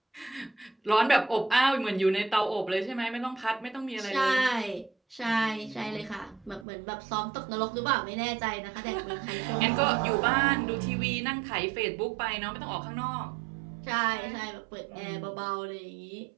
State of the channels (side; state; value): left; drops out; at 6.7 s